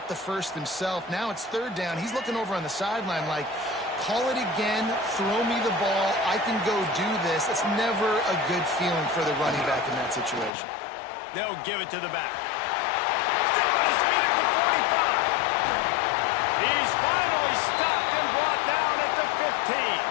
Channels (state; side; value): drops out; right; at 10.5 s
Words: the first himself. Now it's 3rd down. He's looking over on the sideline like, call it again, throw me the ball, I can go do this. It's never a good feeling for the running back in that situation. They'll give it to the back. Still on his feet at the 45. He's finally stopped and brought down at the 15.